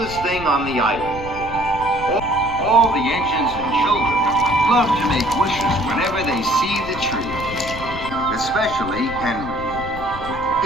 thing on the island. All the engines and children love to make wishes whenever they see the tree, especially Henry.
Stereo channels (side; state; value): left; noise; rumble, 12 dB below the sound